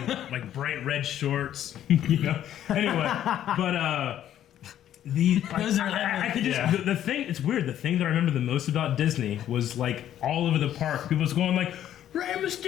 like bright red shorts, you know. Anyway, but Those are I could just the thing. It's weird. The thing that I remember the most about Disney was like all over the park. People was going like Rey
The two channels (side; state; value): right; quieter; 11.2 dB